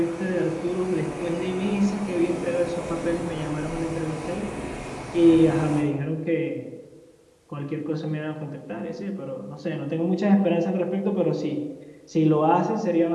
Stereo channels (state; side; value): identical; both; correlation 1.00